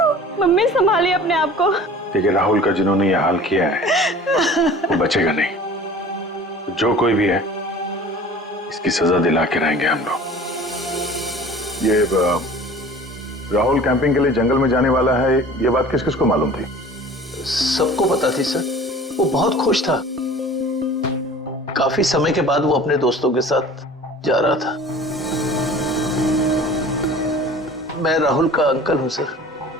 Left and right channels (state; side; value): normal; both; correlation 0.44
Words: मम्मी संभालिए अपने आप को। देखिए, राहुल का जिन्होंने ये हाल किया है वो बचेगा नहीं। जो कोई भी है इसकी सजा दिला के रहेंगे हम लोग। ये राहुल कैंपिंग के लिए जंगल में जाने वाला है, ये बात किस किस को मालूम थी? सबको पता थी सर। वो बहुत खुश था। काफी समय के बाद वो अपने दोस्तों के साथ जा रहा था। मैं राहुल का अंकल हूं सर।